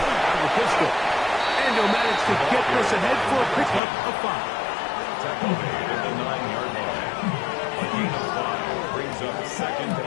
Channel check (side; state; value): right; drops out; at 3.8 s